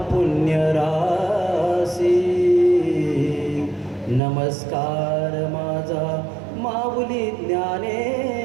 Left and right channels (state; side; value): drops out; left; at 4.2 s